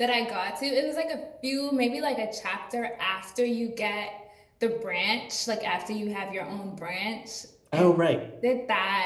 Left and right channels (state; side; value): identical; both; correlation 1.00